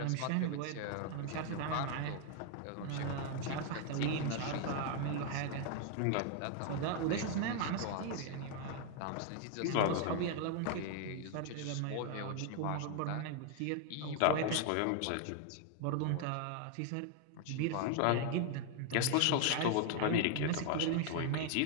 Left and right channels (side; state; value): both; different; correlation 0.00